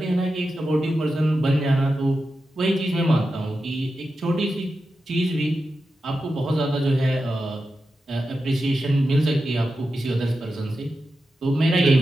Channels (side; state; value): both; normal; correlation 0.90